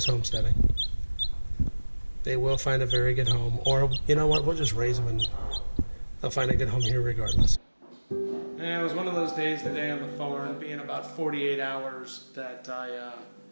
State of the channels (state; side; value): inverted; both; correlation -1.00